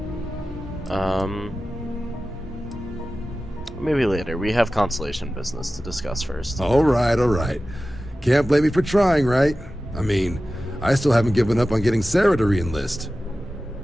Maybe later. We have Constellation business to discuss first. All right, all right. Can't blame me for trying, right? I mean, I still haven't given up on getting Sarah to re-enlist.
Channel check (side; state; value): both; normal; correlation 0.95